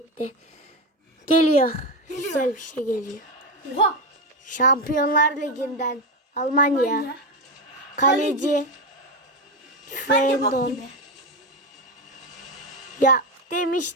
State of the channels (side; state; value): both; normal; correlation 0.14